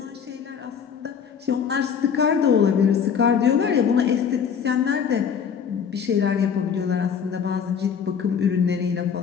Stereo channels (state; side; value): quieter; right; 7.2 dB